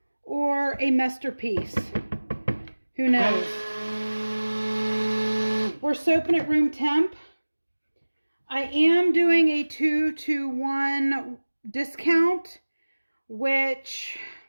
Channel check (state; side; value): inverted; both; correlation -1.00